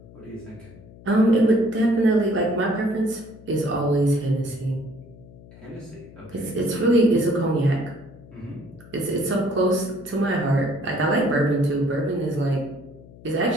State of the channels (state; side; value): noise; left; hum, 21 dB below the sound